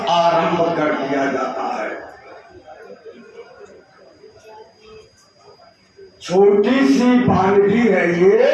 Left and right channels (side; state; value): both; identical; correlation 1.00